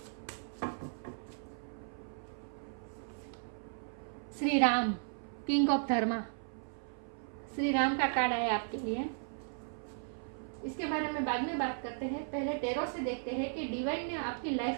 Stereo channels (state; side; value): silent; left; 54 dB below the other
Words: श्री राम, किंग ऑफ धर्मा। श्री राम का कार्ड आया आपके लिए। इसके बारे में बाद में बात करते हैं। पहले टेरो से देखते हैं कि डिवाइन ने आपकी